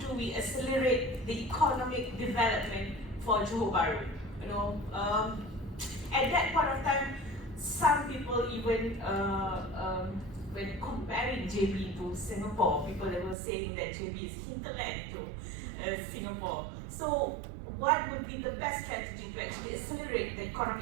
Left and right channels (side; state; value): left; drops out; at 13.4 s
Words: we accelerate the economic development for Johor Bahru. At that point of time, some people even when comparing JB to Singapore, people were saying that JB is hinterland to Singapore. So what would be the best strategy to actually accelerate the